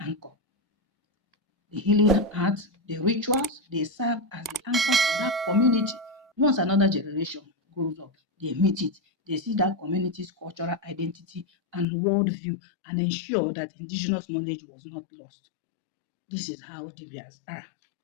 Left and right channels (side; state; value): right; drops out; at 11.9 s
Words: The healing arts, the rituals, they serve as the anchor for that community. Once another generation grows up, they meet it, they see that community's cultural identity and worldview and ensure that indigenous knowledge was not lost. This is how Dibias are,